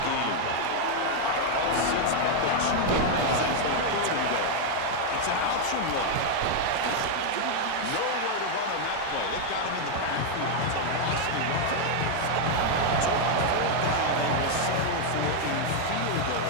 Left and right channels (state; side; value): different; both; correlation 0.00